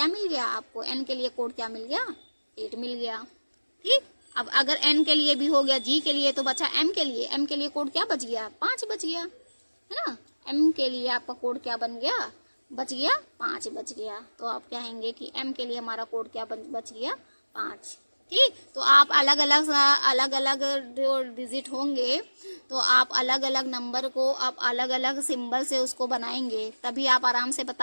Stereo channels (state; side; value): inverted; both; correlation -1.00